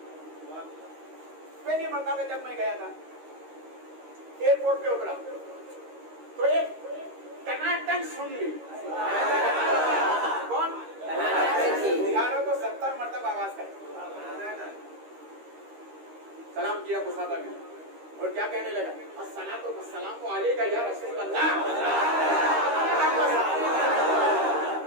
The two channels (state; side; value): late; left; 13 ms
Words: पहली मरतबा जब मैं गया था, एयरपोर्ट पे उतरा तो एक टनाटन सुन ली। कौन? बिहारों को 70 मरतबा आवाज कर सलाम किया मुसाफिर ने, और क्या कहने लगा, अस्सलातु वस्सलामु अलैका या रसूल अल्लाह,